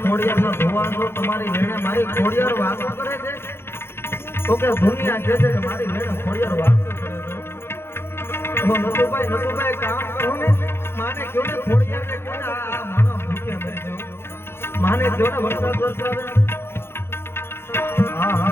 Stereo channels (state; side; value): late; right; 0.11 ms